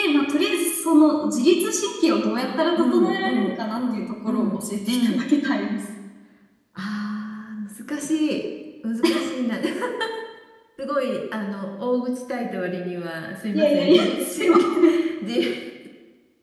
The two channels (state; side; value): identical; both; correlation 1.00